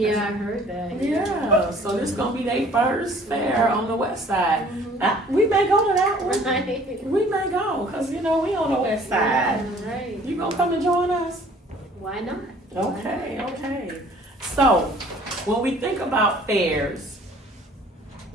I heard that. Yeah, so this gonna be their first fair on the west side. We may go to that one. Right. We may go, cause you know we on the west side. Yeah, right. You gonna come and join us? Why not? Okay. So, when we think about fairs,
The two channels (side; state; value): both; normal; correlation 0.54